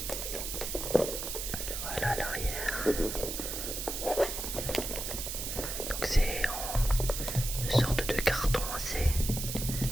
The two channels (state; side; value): noise; right; hiss, 4 dB below the sound